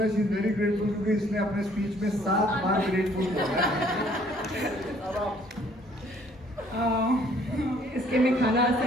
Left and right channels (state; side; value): normal; both; correlation 0.61